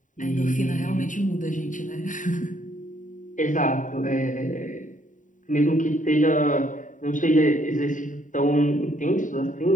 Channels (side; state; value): right; late; 0.37 ms